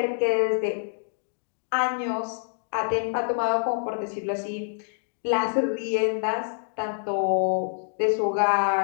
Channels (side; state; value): right; silent; digital silence